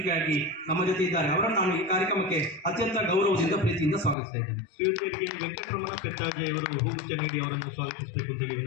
ನಮ್ಮ ಜೊತೆ ಇದ್ದಾರೆ. ಅವರನ್ನು ನಾನು ಈ ಕಾರ್ಯಕ್ರಮಕ್ಕೆ ಅತ್ಯಂತ ಗೌರವದಿಂದ ಪ್ರೀತಿಯಿಂದ ಸ್ವಾಗತಿಸ್ತಾ ಇದ್ದೇನೆ. ಶ್ರೀಯುತರಿಗೆ ವೆಂಕಟರಮಣ ಪೆತ್ತಾಜಿ ಅವರು ಹೂಗುಚ್ಛ ನೀಡಿ ಅವರನ್ನು ಸ್ವಾಗತಿಸಬೇಕು ಅಂತೇಳಿ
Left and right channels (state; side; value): drops out; right; at 4.2 s